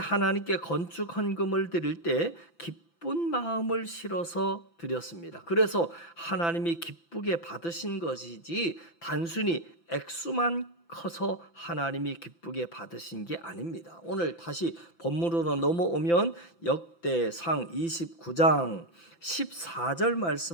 건축 헌금을 드릴 때 기쁜 마음을 실어서 드렸습니다. 그래서 하나님이 기쁘게 받으신 것이지 단순히 액수만 커서 하나님이 기쁘게 받으신 게 아닙니다. 오늘 다시 본문으로 넘어오면 역대상 29장 14절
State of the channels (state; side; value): late; right; 5.9 ms